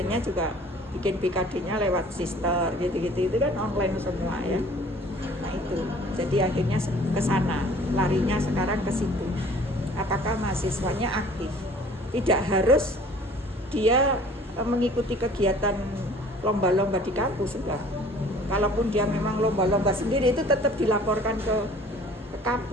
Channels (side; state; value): both; normal; correlation 0.51